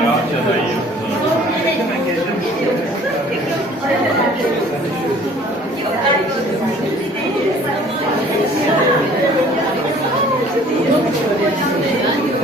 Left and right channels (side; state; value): both; normal; correlation 0.53